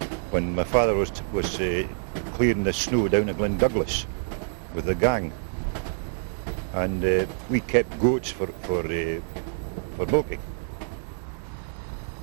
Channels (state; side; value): silent; left; digital silence